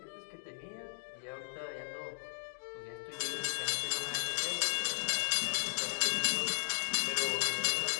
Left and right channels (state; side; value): silent; right; digital silence